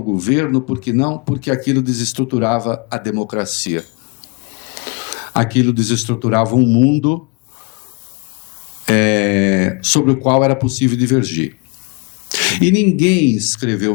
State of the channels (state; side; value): quieter; right; 31.2 dB